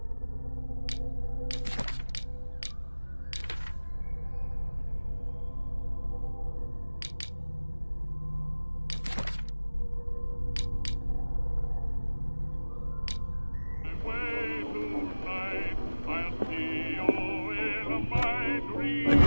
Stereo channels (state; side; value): inverted; both; correlation -1.00